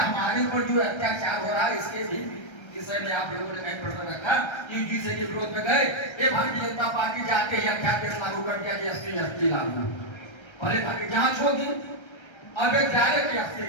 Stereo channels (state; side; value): late; right; 1.3 ms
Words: हमारे ऊपर जो अत्याचार हो रहा है इसके भी विषय में आप लोगों ने कहीं प्रश्न रखा? यूजीसी के विरोध में गए, ये भारतीय जनता पार्टी जाके ही अध्यादेश लागू कर दिया कि एसटी लागू, पहले भारतीय जांच होगी, अब एक डायरेक्ट